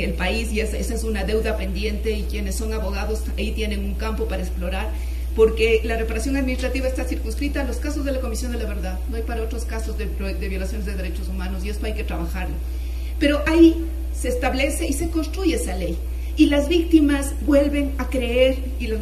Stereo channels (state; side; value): identical; both; correlation 1.00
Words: el país, y esa es una deuda pendiente, y quienes son abogados ahí tienen un campo para explorar, porque la reparación administrativa está circunscrita a los casos de la Comisión de la Verdad, no hay para otros casos de violaciones de derechos humanos, y esto hay que trabajarlo. Pero ahí se establece y se construye esa ley, y las víctimas vuelven a creer, y las